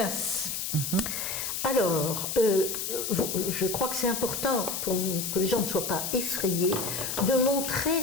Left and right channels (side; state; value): left; noise; hiss, 3 dB below the sound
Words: Alors, je crois que c'est important pour que les gens ne soient pas effrayés de montrer